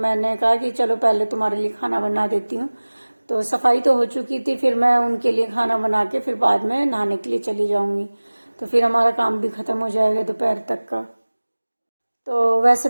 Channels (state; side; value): inverted; both; correlation -1.00